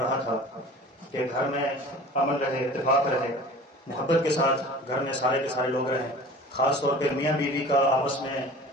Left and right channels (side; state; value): both; normal; correlation 0.42